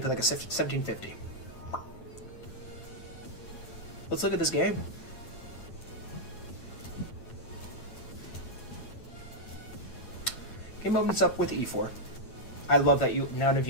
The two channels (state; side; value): late; right; 9.0 ms